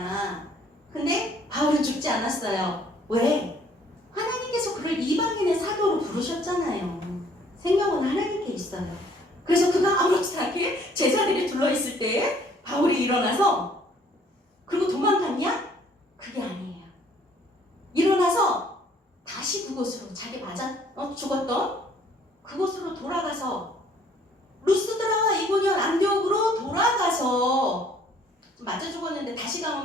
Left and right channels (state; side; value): normal; both; correlation 0.60